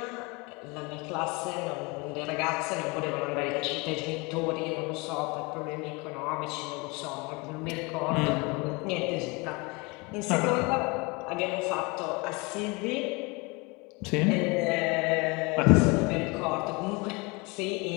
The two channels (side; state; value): right; quieter; 27.4 dB